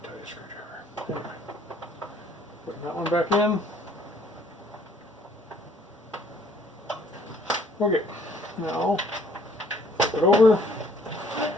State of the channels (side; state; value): both; normal; correlation 0.61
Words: screwdriver. Anyway, putting that one back in. Okay, now flip it over,